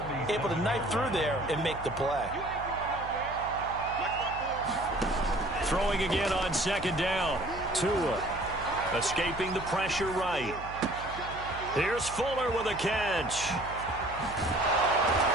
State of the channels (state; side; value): noise; right; hum, 13 dB below the sound